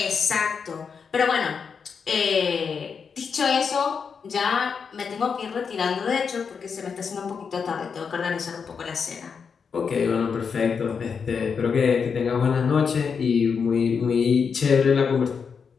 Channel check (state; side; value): quieter; right; 6.0 dB